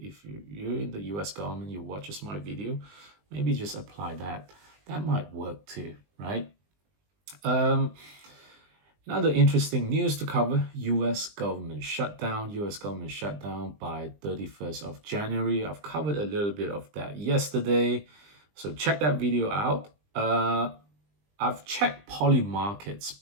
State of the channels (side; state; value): left; late; 20 ms